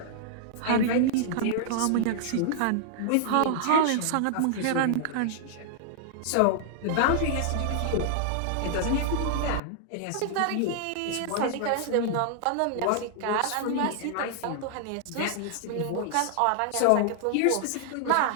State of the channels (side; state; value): both; different; correlation -0.01